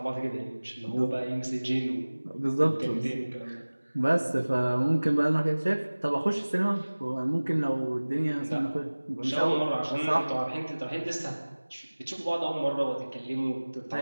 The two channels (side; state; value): both; inverted; correlation -1.00